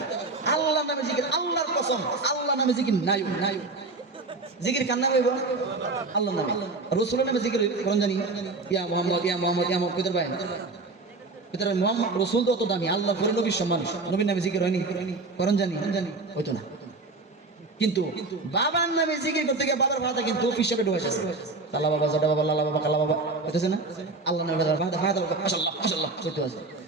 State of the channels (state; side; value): quieter; left; 3.5 dB